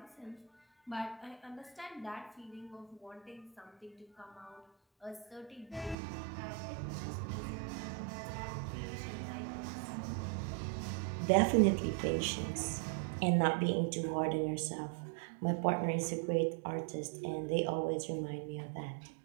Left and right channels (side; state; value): left; drops out; at 6.0 s